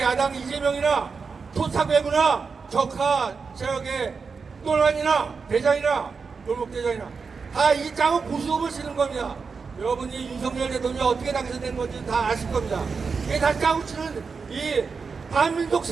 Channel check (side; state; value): left; quieter; 5.1 dB